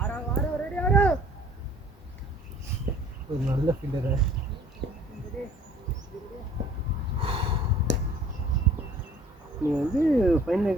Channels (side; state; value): both; normal; correlation 0.53